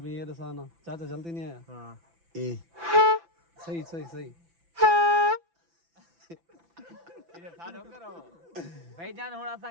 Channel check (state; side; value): late; left; 5.9 ms